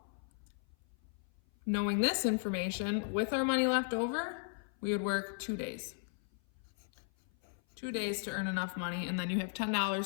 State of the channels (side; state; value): right; silent; 54 dB below the other